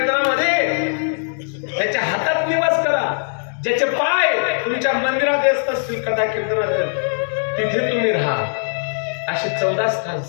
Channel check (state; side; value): silent; right; digital silence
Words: त्याच्या हातात निवास करा. ज्याचे पाय तुमच्या मंदिरात येत असतील कथा कीर्तनात, तिथे तुम्ही राहा. असे 14 स्थान